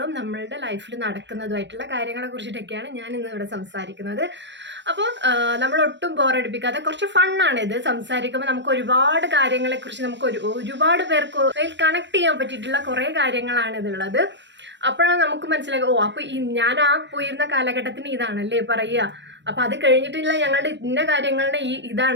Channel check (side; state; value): left; late; 0.52 ms